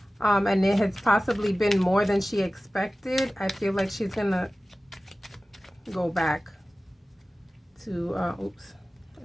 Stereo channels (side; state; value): both; normal; correlation 0.97